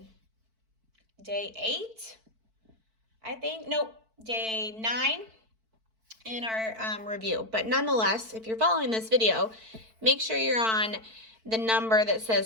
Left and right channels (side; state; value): left; late; 4.5 ms